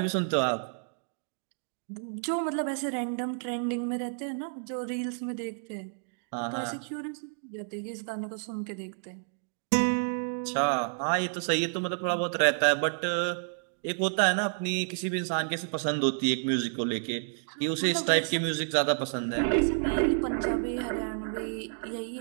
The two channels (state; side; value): silent; left; digital silence